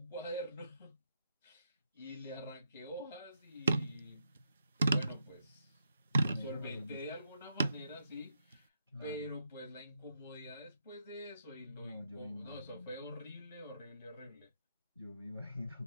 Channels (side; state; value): both; inverted; correlation -0.79